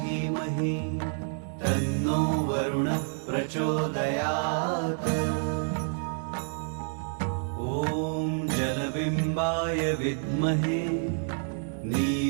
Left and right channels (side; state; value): left; silent; 59 dB below the other